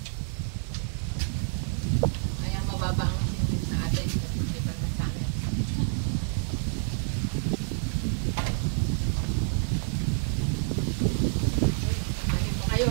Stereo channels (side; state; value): left; silent; 59 dB below the other